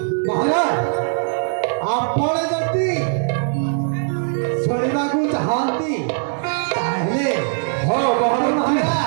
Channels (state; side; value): silent; left; digital silence